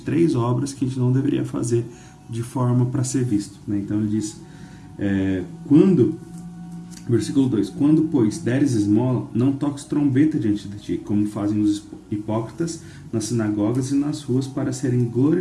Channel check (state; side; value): identical; both; correlation 1.00